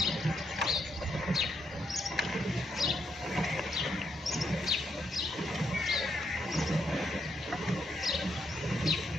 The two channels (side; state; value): both; normal; correlation 0.77